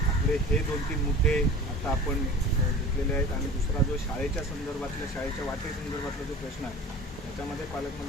आपले हे 2-3 मुद्दे आता आपण घेतलेले आहेत आणि दुसरा जो शाळेच्या संदर्भातल्या शाळेच्या वाटेसंदर्भातला जो प्रश्न आहे त्याच्यामध्ये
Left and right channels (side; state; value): both; normal; correlation 0.39